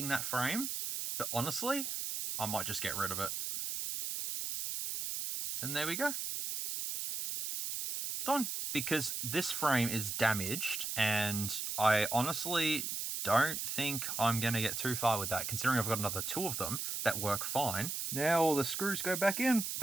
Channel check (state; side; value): noise; right; hiss, 3 dB below the sound